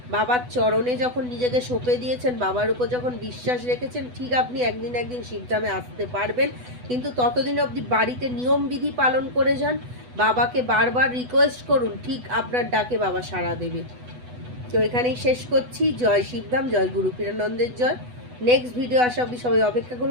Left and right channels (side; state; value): left; late; 8.1 ms